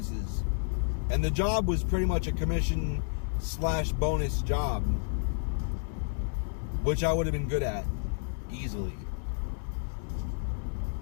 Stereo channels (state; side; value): silent; right; 57 dB below the other